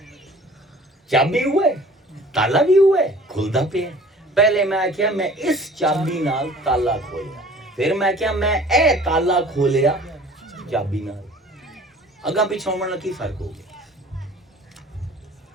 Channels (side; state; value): both; normal; correlation 0.48